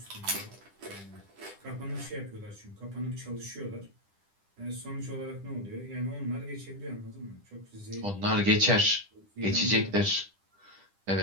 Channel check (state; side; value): late; left; 10 ms